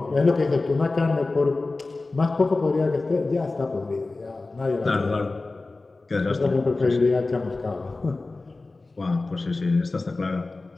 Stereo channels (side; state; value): right; quieter; 3.4 dB